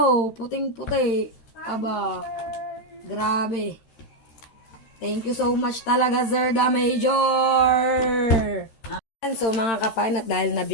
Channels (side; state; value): right; late; 13 ms